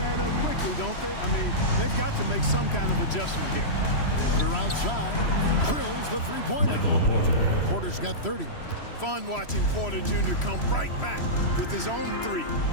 up quickly, don't they? I mean, they've got to make some kind of adjustment here. Porter outside. Drills the three-pointer. Porter's got 30. Fun watching Porter Jr. come right back with his own 3.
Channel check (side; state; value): right; late; 3.0 ms